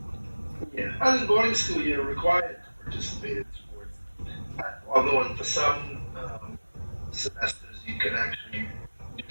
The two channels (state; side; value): inverted; both; correlation -1.00